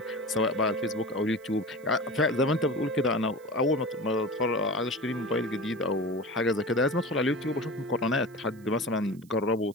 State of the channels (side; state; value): right; noise; hiss, 29 dB below the sound